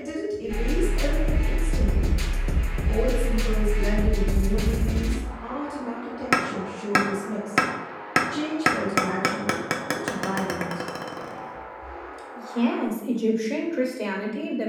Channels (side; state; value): both; identical; correlation 1.00